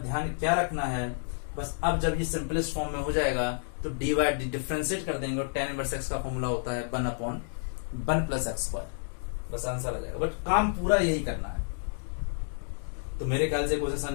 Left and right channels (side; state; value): right; silent; digital silence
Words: ध्यान क्या रखना है, बस अब जब ये सिंपलेस्ट फॉर्म में हो जाएगा तो डिफरेंशिएट कर देंगे, और tan इनवर्स x का फॉर्मूला होता है 1/, 1 प्लस एक्स स्क्वायर, बस आंसर आ जाएगा। बट काम पूरा यही करना है। तो मेरे ख्याल से क्वेश्चन समझ